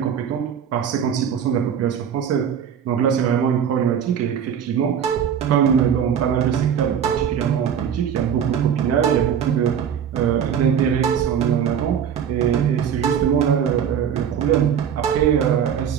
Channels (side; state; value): left; quieter; 8.3 dB